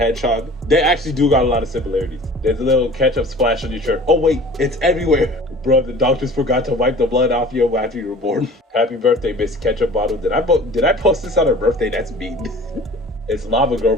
They actually do got a lot of similarities. There's a little ketchup splash on your shirt. Oh wait, it's everywhere. Bro, the doctors forgot to wipe the blood off you after you were born. Happy birthday, Miss Ketchup Bottle. Did I post this on her birthday? That's mean. It's Lava Girl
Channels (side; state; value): both; normal; correlation 0.45